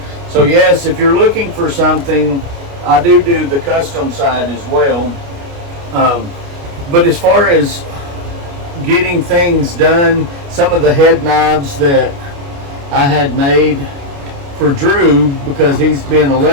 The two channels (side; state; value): left; late; 29 ms